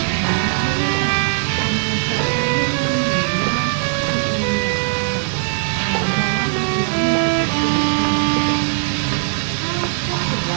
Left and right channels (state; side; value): silent; left; 65 dB below the other